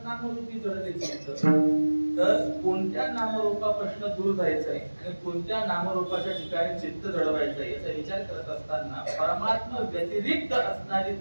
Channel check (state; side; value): inverted; both; correlation -1.00